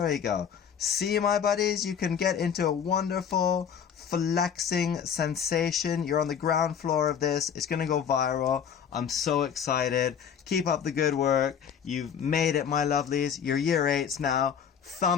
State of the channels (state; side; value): quieter; right; 7.9 dB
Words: we go. See, my buddies, you can get into a wonderful flexing sensation. You're on the ground floor of this. It's going to go viral. I'm so excited. Keep up the good work. You've made it, my lovelies. You're year 8s now.